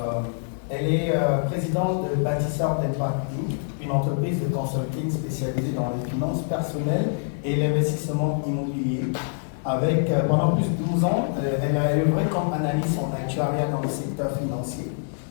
Elle est présidente de Bâtisseurs d'Impact Inc., une entreprise de consulting spécialisée dans les finances personnelles et l'investissement immobilier. Avec, pendant plus de 12 ans, elle a œuvré comme analyste en actuariat dans le secteur financier.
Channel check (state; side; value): silent; right; digital silence